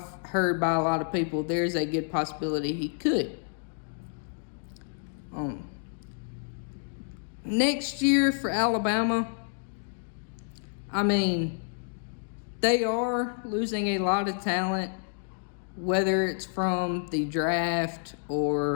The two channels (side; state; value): right; silent; digital silence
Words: heard by a lot of people there's a good possibility he could. Next year for Alabama, I mean, they are losing a lot of talent, whether it's from the draft